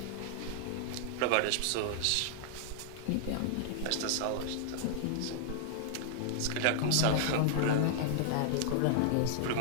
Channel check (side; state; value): both; different; correlation -0.01